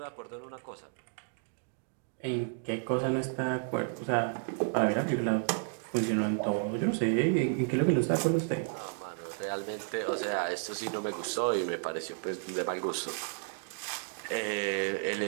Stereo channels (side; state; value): left; silent; digital silence